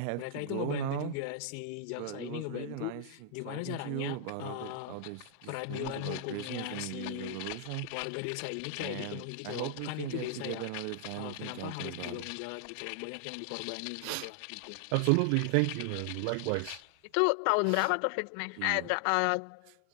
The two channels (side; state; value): both; different; correlation 0.00